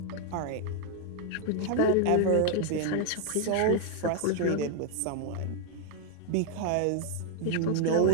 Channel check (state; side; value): different; both; correlation 0.00